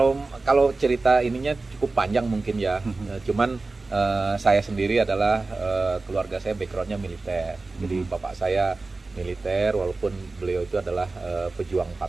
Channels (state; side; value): quieter; left; 3.5 dB